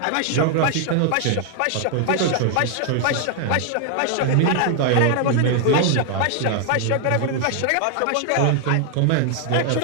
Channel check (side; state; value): both; different; correlation 0.00